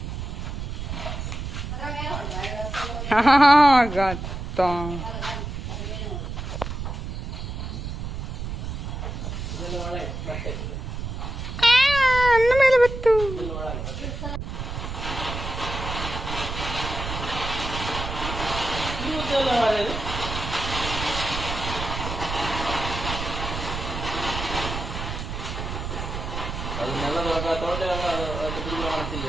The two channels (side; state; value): right; noise; rumble, 5 dB below the sound